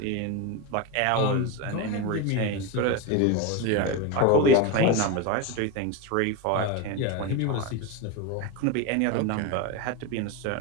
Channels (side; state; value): both; different; correlation 0.04